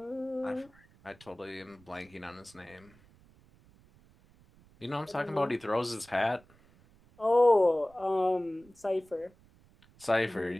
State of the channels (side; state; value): right; noise; rumble, 28 dB below the sound